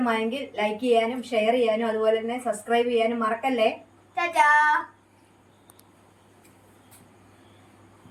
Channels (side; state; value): both; identical; correlation 1.00